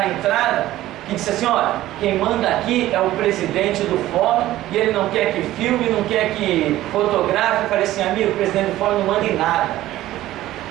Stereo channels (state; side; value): quieter; left; 15.0 dB